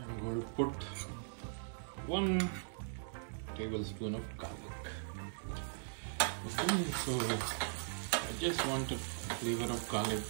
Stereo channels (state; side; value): silent; left; digital silence